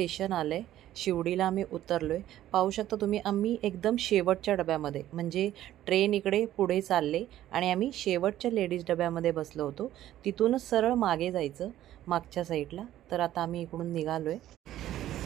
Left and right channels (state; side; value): quieter; left; 13.0 dB